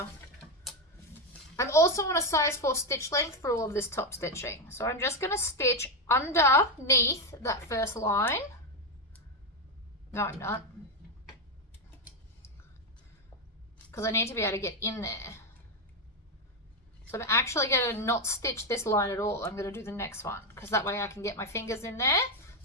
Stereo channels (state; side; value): normal; both; correlation 0.07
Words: I'm also on a size 4 stitch length for all of this top stitching. So I'm just going to stitch underneath that first line. No, I'm not. Because I need to be able to get in there. So I'm actually going to not stitch this line at all. I'm going to do the next one, because that way I can get my fingers in there.